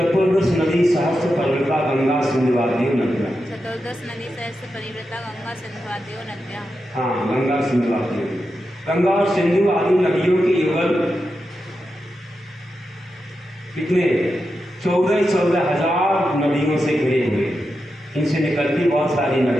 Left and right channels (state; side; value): normal; both; correlation 0.88